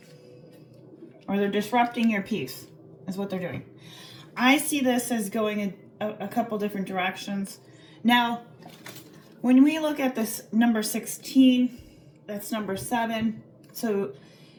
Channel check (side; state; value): both; identical; correlation 1.00